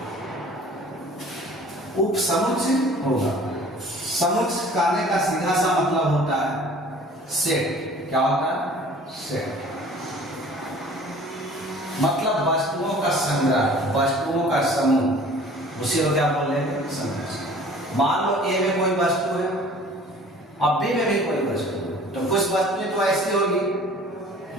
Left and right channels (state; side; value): normal; both; correlation 0.49